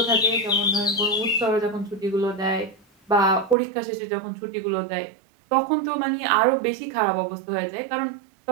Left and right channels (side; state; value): left; drops out; at 3.6 s